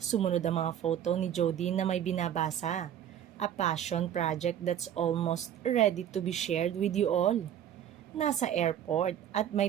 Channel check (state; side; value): quieter; left; 10.2 dB